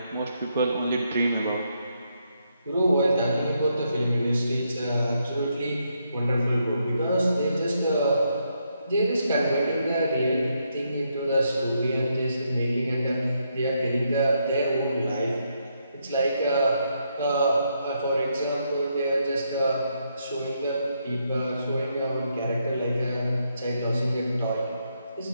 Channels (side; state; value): both; inverted; correlation -0.78